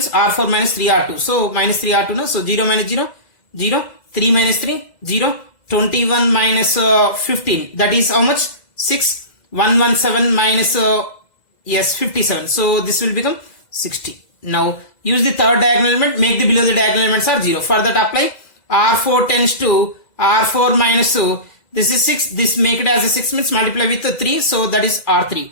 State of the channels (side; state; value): right; late; 2.0 ms